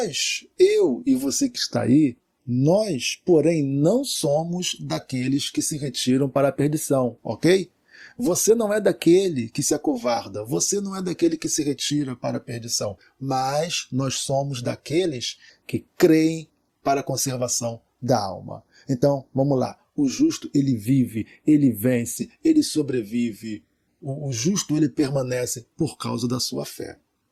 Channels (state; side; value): identical; both; correlation 1.00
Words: eu e você que está aí, nós, porém, não somos daqueles que se retiram para a perdição, ok? Você não é daquele que se acovarda, você não é daquele que se retira para a perdição, mas nós somos daqueles que creem para a conservação da alma. Então, vamos lá. O justo, ele vive, ele vence, ele sobrevive. O justo, ele permanece por causa da sua fé.